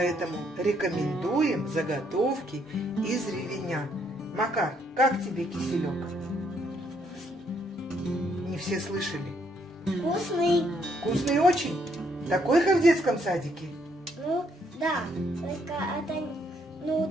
рекомендуем заготовки из ревеня. Макар, как тебе киселек? Не все слышали. Вкусный. Вкусный очень? Такой, как в детском садике? Ну, да.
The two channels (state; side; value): normal; both; correlation 0.71